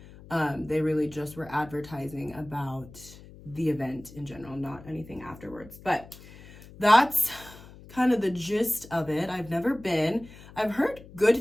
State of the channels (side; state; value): left; noise; hum, 19 dB below the sound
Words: They really just were advertising about the event in general, not anything afterwards. But that's kind of the gist of it. I've never been. I've heard